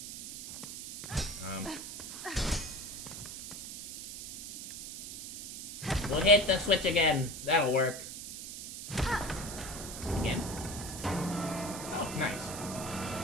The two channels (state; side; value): noise; right; hiss, 9 dB below the sound